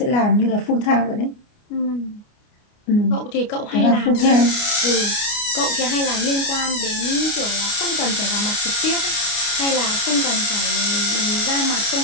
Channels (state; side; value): late; right; 29 ms